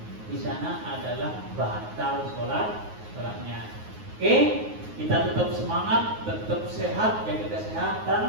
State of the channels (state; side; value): late; left; 9.5 ms